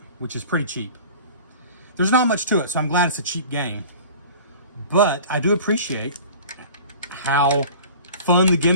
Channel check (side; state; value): both; inverted; correlation -0.42